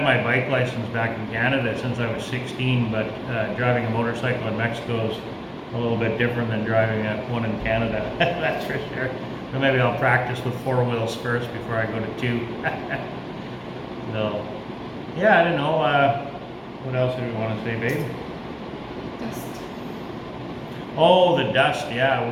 my bike license back in Canada since I was 16, but driving a motorcycle in Mexico is a little bit different than driving one in Canada. That's for sure. So maybe I'll practice with 4 wheels first before I go to 2. So, yeah, I don't know. What else did we want to say, babe? Dust. Oh, the dust. Yeah,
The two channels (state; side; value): identical; both; correlation 1.00